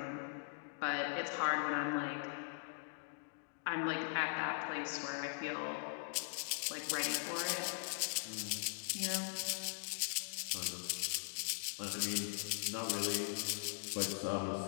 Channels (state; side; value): silent; right; digital silence